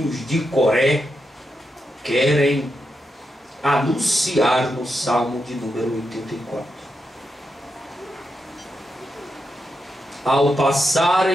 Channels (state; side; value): normal; both; correlation 0.85